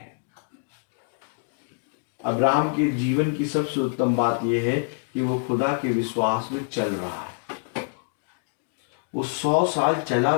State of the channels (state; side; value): silent; right; 59 dB below the other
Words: अब्राहम के जीवन की सबसे उत्तम बात यह है कि वो खुदा के विश्वास में चल रहा है। वो 100 साल चला